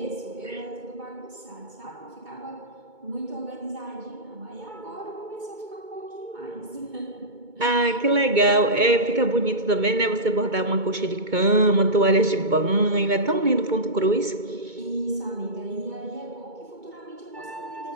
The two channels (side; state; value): left; late; 2.2 ms